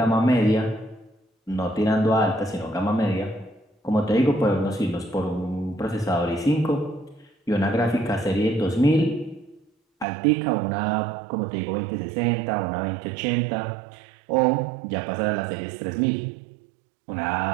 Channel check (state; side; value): drops out; left; at 10.1 s